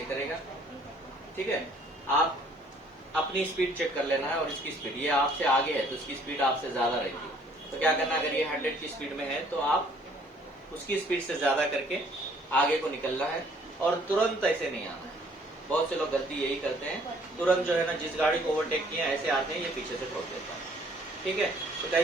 करेगा। ठीक है, आप अपनी स्पीड चेक कर लेना है और इसकी स्पीड, ये आपसे आगे है तो इसकी स्पीड आपसे ज्यादा रहेगी। तो क्या करना है, अगर ये 100 की स्पीड में है तो आप उसकी स्पीड से ज्यादा करके आगे को निकलना है और तुरंत ऐसे नहीं आना है। बहुत से लोग गलती यही करते हैं, तुरंत जो है ना, जिस गाड़ी को ओवरटेक किया ऐसे आते हैं, ये पीछे से ठोक देता है। ठीक है, तो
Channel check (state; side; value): normal; both; correlation 0.59